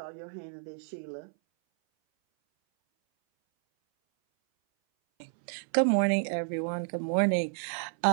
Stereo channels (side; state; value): left; silent; 58 dB below the other